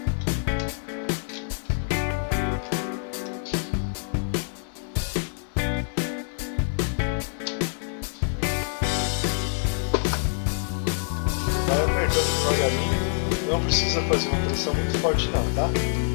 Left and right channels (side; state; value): right; silent; digital silence